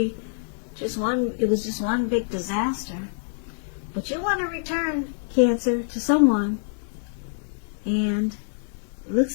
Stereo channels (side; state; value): right; silent; digital silence